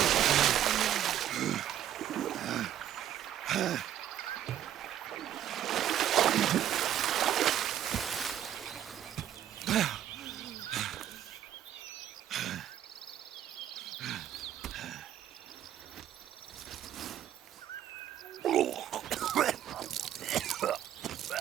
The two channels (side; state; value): left; quieter; 11.0 dB